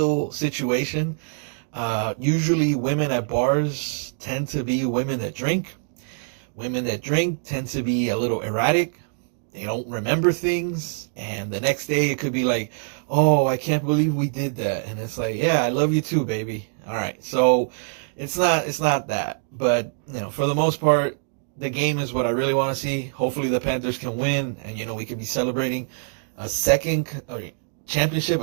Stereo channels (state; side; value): silent; left; digital silence